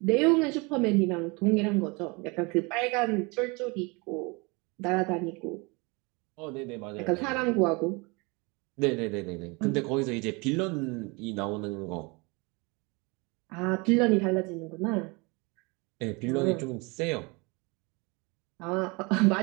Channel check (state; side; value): quieter; left; 27.9 dB